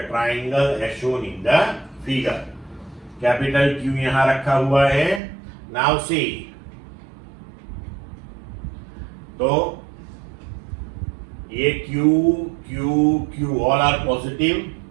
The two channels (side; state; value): left; drops out; at 5.2 s